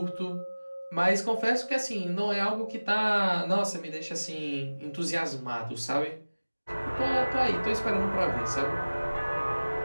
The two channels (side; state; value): both; inverted; correlation -1.00